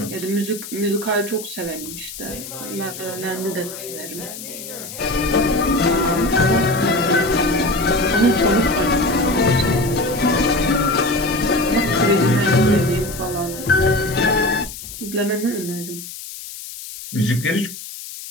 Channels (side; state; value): left; noise; hiss, 12 dB below the sound